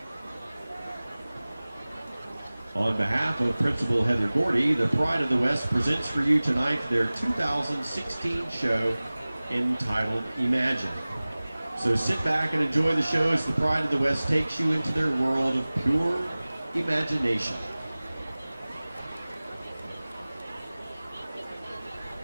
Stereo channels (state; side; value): inverted; both; correlation -0.99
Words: On behalf of Principal Heather Gordy, the Pride of the West presents for you tonight their 2016 show entitled Imagine. So sit back and enjoy the show as the Pride of the West takes you into their world of pure imagination.